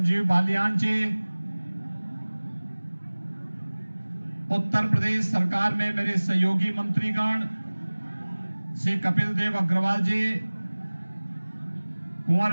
बालियान जी, उत्तर प्रदेश सरकार में मेरे सहयोगी मंत्रीगण श्री कपिल देव अग्रवाल जी,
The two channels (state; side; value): inverted; both; correlation -1.00